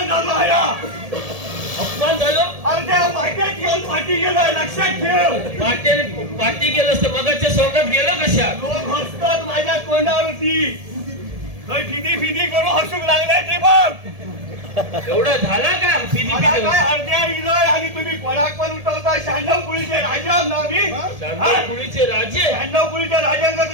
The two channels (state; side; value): late; left; 1.7 ms